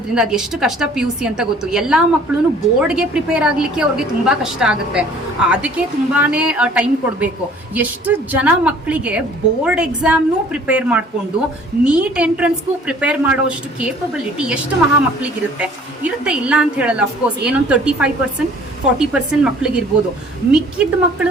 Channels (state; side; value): normal; both; correlation 0.53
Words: ಅದು ಎಷ್ಟು ಕಷ್ಟ ಪಿ ಯು ಸಿ ಅಂತ ಗೊತ್ತು. ಎಲ್ಲಾ ಮಕ್ಕಳು ಬೋರ್ಡ್ಗೆ ಪ್ರಿಪೇರ್ ಆಗ್ಲಿಕ್ಕೆ ಅವ್ರಿಗೆ ತುಂಬಾ ಕಷ್ಟ ಆಗುತ್ತೆ. ಅದಕ್ಕೆ ತುಂಬಾನೇ ಟೈಮ್ ಕೊಡಬೇಕು. ಎಷ್ಟು ಜನ ಮಕ್ಕಳಿಗೆ ಬೋರ್ಡ್ ಎಕ್ಸಾಮ್ನು ಪ್ರಿಪೇರ್ ಮಾಡಿಕೊಂಡು ನೀಟ್ ಎಂಟ್ರೆನ್ಸ್ಗೂ ಪ್ರಿಪೇರ್ ಮಾಡೋಷ್ಟು ಕೇಪಬಿಲಿಟಿ ಎಷ್ಟು ಮಹಾ ಮಕ್ಕಳಿಗಿರುತ್ತೆ ಇಲ್ಲ ಅಂತ ಹೇಳಲ್ಲ. ಅಫ್ಕೋರ್ಸ್ ಏನೊಂದು 35% 40% ಮಕ್ಕಳಿಗಿರ್ಬೋದು. ಮಿಕ್ಕಿದ ಮಕ್ಕಳ